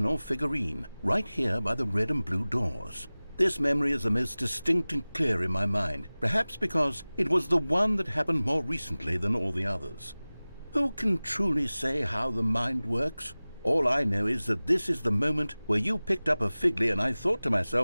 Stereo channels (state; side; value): inverted; both; correlation -0.99